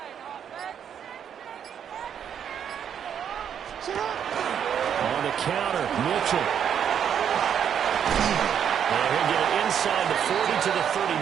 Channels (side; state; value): left; quieter; 8.5 dB